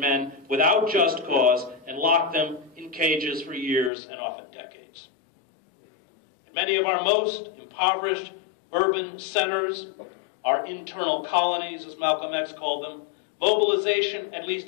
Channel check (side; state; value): right; drops out; at 3.9 s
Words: without just cause, and lock them in cages for years and often decades. In many of our most impoverished urban centers, our internal colonies, as Malcolm X called them, mobilization, at